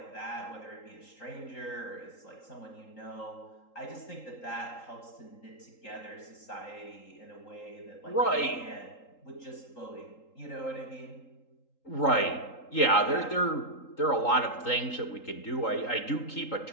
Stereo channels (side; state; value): right; late; 3.8 ms